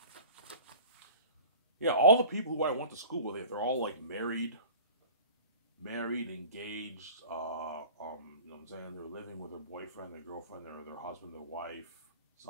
Yeah, all the people who I went to school with, they're all like married, engaged. You know what I'm saying? They're living with their boyfriend, their girlfriend, their husband, their wife.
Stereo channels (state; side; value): inverted; both; correlation -0.41